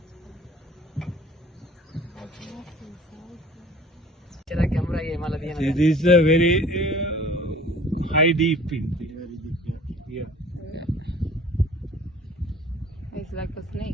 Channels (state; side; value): normal; both; correlation 0.48